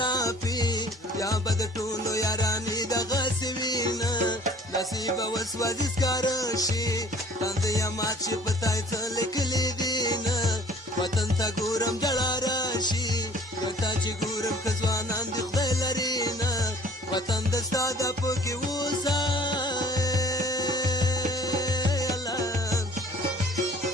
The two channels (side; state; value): both; normal; correlation 0.52